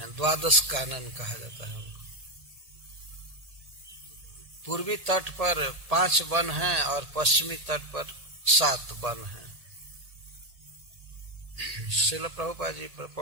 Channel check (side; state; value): left; late; 1.7 ms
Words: 12 कानन कहा जाता है उनको। पूर्वी तट पर 5 वन हैं और पश्चिमी तट पर 7 वन हैं। श्रील प्रभुपाद जी